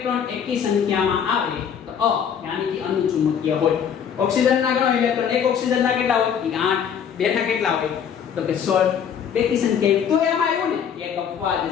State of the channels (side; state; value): right; quieter; 8.0 dB